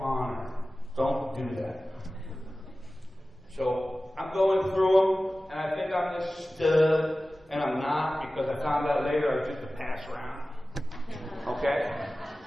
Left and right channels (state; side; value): normal; both; correlation 0.96